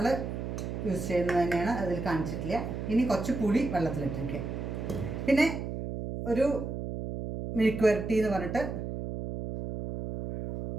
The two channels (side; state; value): right; noise; hum, 5 dB below the sound